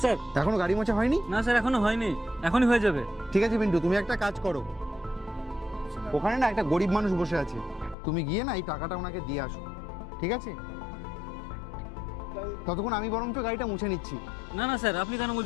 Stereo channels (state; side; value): drops out; right; at 8.0 s